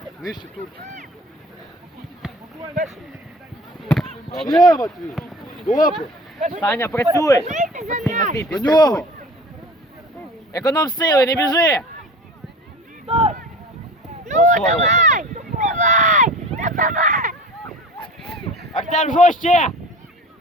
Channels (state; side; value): normal; both; correlation 0.40